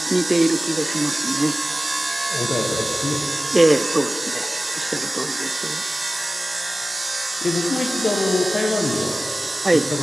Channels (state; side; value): normal; both; correlation 0.96